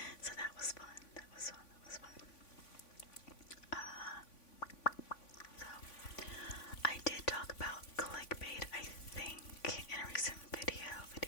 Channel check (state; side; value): late; right; 3.5 ms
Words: So that was fun. So I did talk about clickbait, I think, in a recent video,